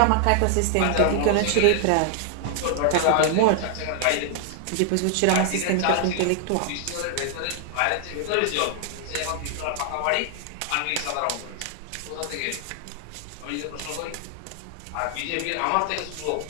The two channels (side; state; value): both; different; correlation 0.00